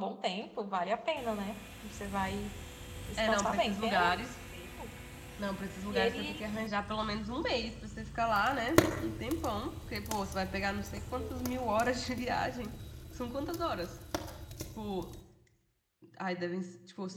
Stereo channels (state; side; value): identical; both; correlation 1.00